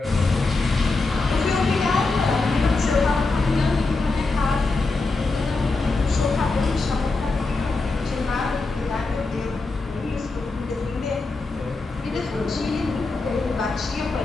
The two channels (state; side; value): quieter; right; 3.6 dB